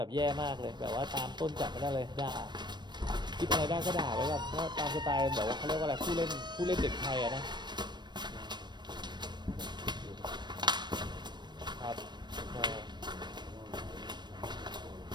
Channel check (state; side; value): late; left; 0.22 ms